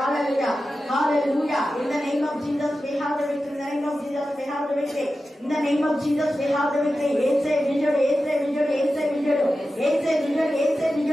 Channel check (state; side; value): normal; both; correlation 0.93